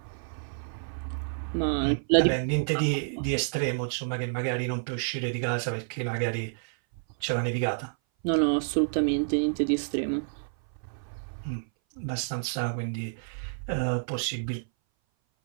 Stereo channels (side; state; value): left; silent; 57 dB below the other